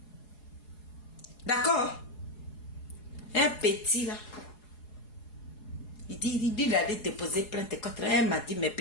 D'accord? Un petit là. Il dit il allait déposer plainte contre elle. Elle m'a dit, mais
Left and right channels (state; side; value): late; right; 4.8 ms